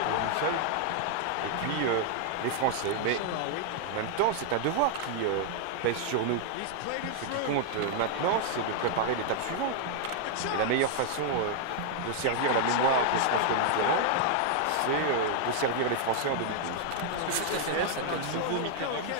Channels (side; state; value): both; different; correlation 0.00